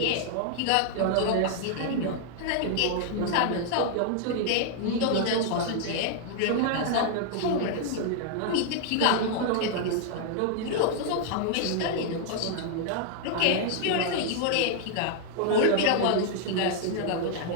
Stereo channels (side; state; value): both; different; correlation 0.00